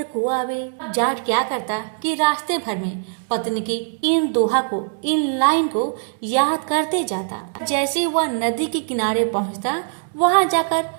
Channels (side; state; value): left; silent; digital silence